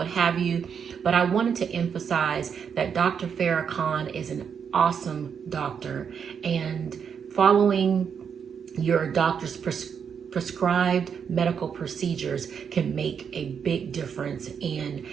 have you. But I wanted to emphasize that Dr. Farah Khan is an awesome doctor, and following your doctor's prescribed medical procedures can make a big difference in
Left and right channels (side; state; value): left; quieter; 7.1 dB